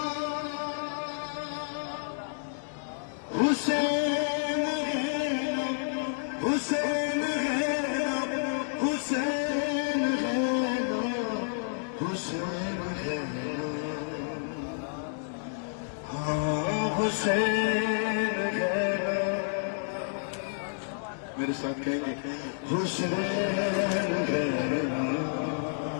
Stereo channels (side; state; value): right; silent; digital silence